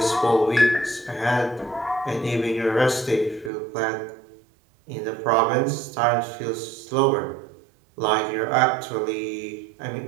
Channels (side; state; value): left; drops out; at 3.5 s